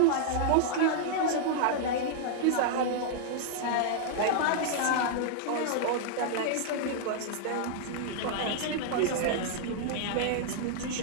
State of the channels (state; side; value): different; both; correlation -0.01